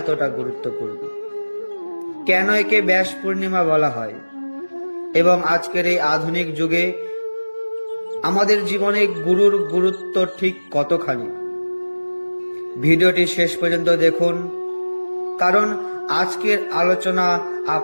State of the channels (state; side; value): inverted; both; correlation -1.00